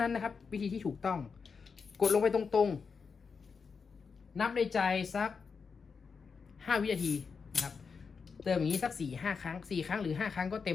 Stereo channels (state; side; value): quieter; right; 5.5 dB